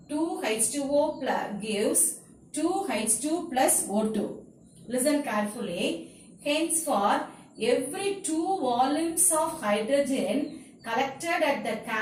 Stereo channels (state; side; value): identical; both; correlation 1.00